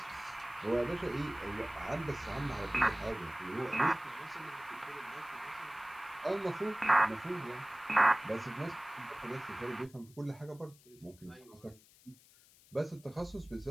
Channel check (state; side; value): noise; left; hiss, 25 dB below the sound